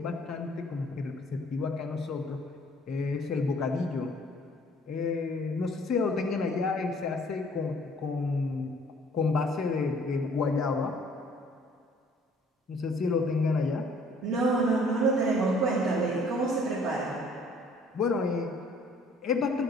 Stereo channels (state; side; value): normal; both; correlation 0.57